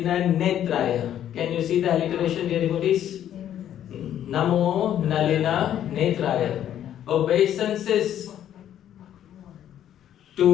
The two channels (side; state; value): right; quieter; 10.8 dB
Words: Netraya. Can you see the alliteration, dear devotees? Namo Nalina Netraya. Obeisances